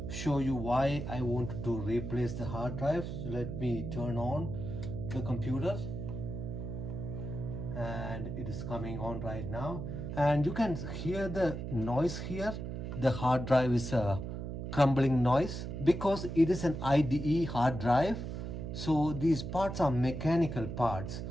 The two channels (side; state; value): right; noise; hum, 6 dB below the sound